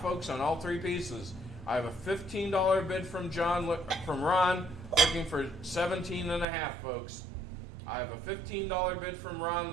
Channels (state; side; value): drops out; left; at 6.5 s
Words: folks, on all 3 pieces. I have a $15 bid from from Ron looking for 17 and a half, folks. I have a $15 bid from Ron